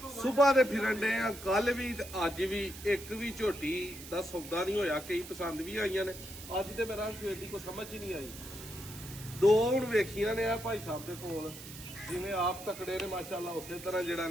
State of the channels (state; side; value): noise; right; hiss, 14 dB below the sound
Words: ਸੁਬਾਹ ਦੇ ਫਿਰਨ ਦੇ ਆ, ਕੱਲ ਵੀ ਤੇ ਅੱਜ ਵੀ ਇੱਕ ਵੀ ਝੋਟੀ ਦਾ ਸੌਦਾ ਨਹੀਂ ਹੋਇਆ। ਕਈ ਪਸੰਦ ਵੀ ਆਈਆਂ ਨੇ, ਅੱਜ ਤੇ ਮੇਰਾ ਸਵੇਰ ਦੀ ਕੋਈ ਸਮਝ ਹੀ ਨਹੀਂ ਆਈ। ਦੋ ਹੁਣ ਵੇਖੀਆਂ ਨੇ ਆ ਭਾਈ ਸਾਹਿਬ ਦੇ ਕੋਲ, ਜਿਵੇਂ ਆਪ ਤਕੜੇ ਨੇ ਮਾਸ਼ਾਅੱਲਾ, ਉਸੇ ਤਰ੍ਹਾਂ ਜਿਹੜਾ